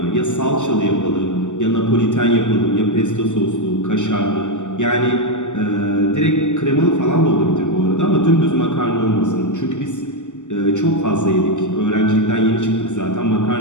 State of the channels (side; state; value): right; late; 0.85 ms